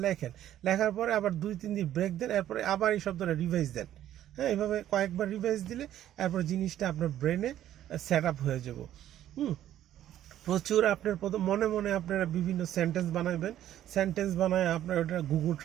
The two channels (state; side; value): quieter; left; 12.0 dB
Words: লেখেন, লেখার পরে আবার 2-3 দিন ব্রেক দেন, এরপরে আবার এই শব্দটা রিভাইজ দেন। হ্যাঁ, এইভাবে কয়েকবার রিভাইজ দিলে এরপর জিনিসটা আপনার ব্রেনে সেট আপ হয়ে যাব। প্রচুর আপনার মনে মনে আপনারা বিভিন্ন সেন্টেন্স বানাবেন, সেন্টেন্স বানায় আপনার ওটা গুগল